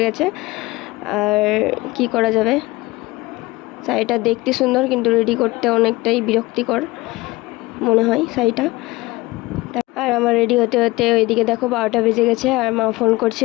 গেছে। আর কি করা যাবে, শাড়িটা দেখতে সুন্দর কিন্তু রেডি করতে অনেকটাই বিরক্তিকর মনে হয় শাড়িটা। আর আমার রেডি হতে হতে ওইদিকে দেখো 12টা বেজে গেছে। আর মা ফোন করছে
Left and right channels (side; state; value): right; quieter; 20.6 dB